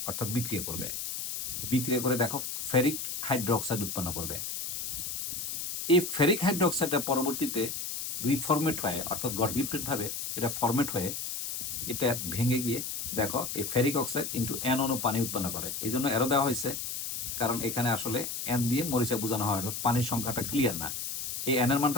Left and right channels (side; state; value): left; noise; hiss, 4 dB below the sound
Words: অর্থাৎ বিক্রিয়া করবে। বিক্রিয়া করে দেখো ফেরিক হাইড্রোক্সাইড উৎপন্ন করবে। এই ফেরিক হাইড্রোক্সাইডটা পরবর্তীতে রিফর্মেট হয়ে, অর্থাৎ গড গিফটেডভাবে এটা ফরমেট হয়ে এটা ভেঙে গিয়ে দেখো এই ফেরিক অক্সাইড ইন্টু এন অনু পানি উৎপন্ন করে। এই জন্য এরও দেওয়া হয়েছে, কারণ এখানে আসলে এন দিয়ে মরিচা বোঝানো হয়, অর্থাৎ পানির সংখ্যাটা ক্লিয়ার না। এই এনের